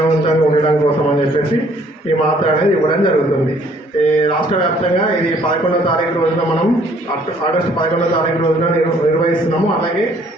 ఉండడం కోసం అని చెప్పేసి ఈ మాత్ర అనేది ఇవ్వడం జరుగుతుంది. రాష్ట్ర వ్యాప్తంగా ఇది 11వ తారీఖు రోజున మనం ఆగస్టు 11వ తారీఖు రోజున నిర్వహిస్తున్నాము. అలాగే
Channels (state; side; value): normal; both; correlation 0.61